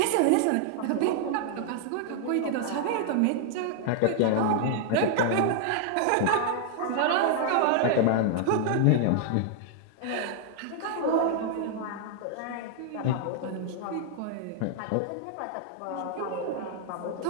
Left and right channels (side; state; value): both; different; correlation 0.00